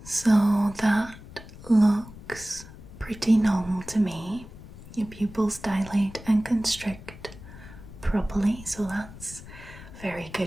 So that looks pretty normal to me. Your pupils dilate and constrict properly, so that's very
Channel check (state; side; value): noise; left; rumble, 16 dB below the sound